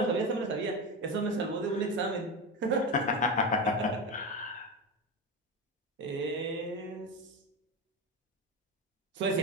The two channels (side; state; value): both; normal; correlation 0.19